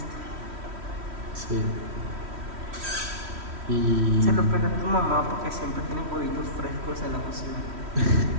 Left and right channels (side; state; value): left; late; 3.1 ms